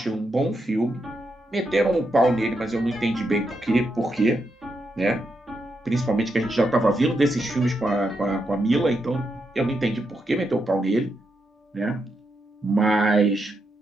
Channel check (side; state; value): both; normal; correlation 0.83